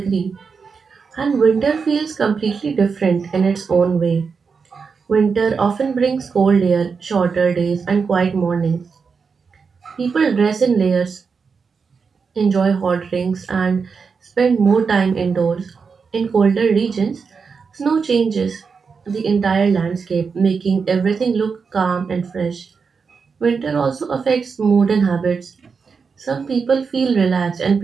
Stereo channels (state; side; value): quieter; left; 5.4 dB